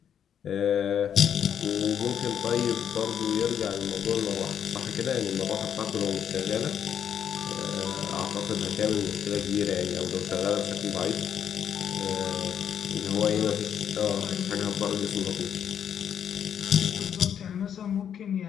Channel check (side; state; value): right; quieter; 8.7 dB